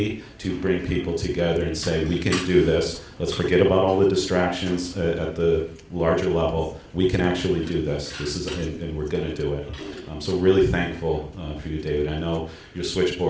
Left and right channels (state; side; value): identical; both; correlation 1.00